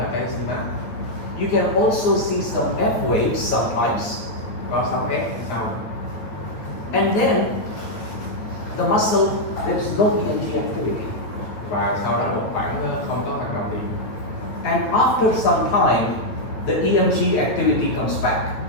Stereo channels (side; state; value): right; late; 9.1 ms